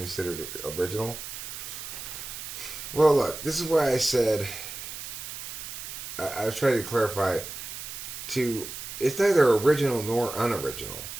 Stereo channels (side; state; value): right; noise; hiss, 9 dB below the sound